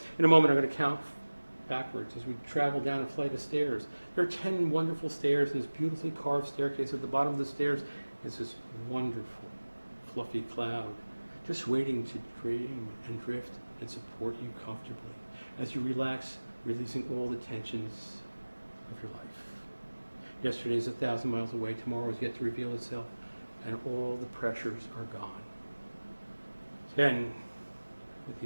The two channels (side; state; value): both; inverted; correlation -1.00